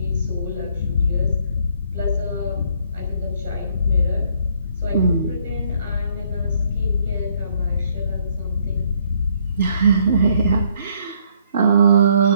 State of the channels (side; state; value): both; inverted; correlation -0.66